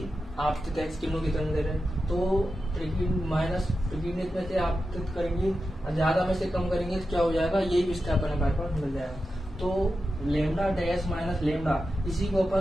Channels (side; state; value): both; normal; correlation 0.90